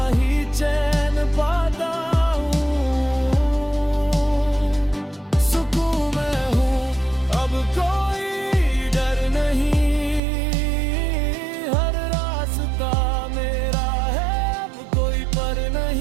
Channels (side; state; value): left; drops out; at 10.2 s